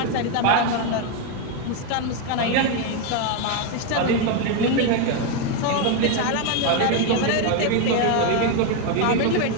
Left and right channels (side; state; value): both; different; correlation 0.02